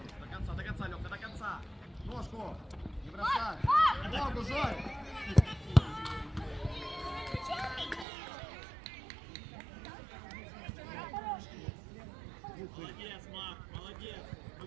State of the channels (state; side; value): drops out; left; at 8.1 s